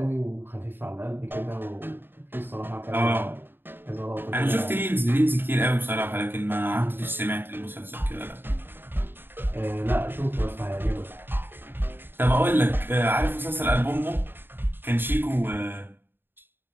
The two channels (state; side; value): late; left; 0.099 ms